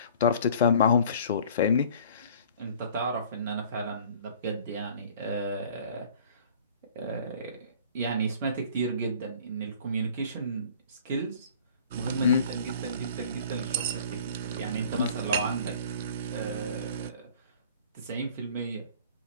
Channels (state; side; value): inverted; both; correlation -0.49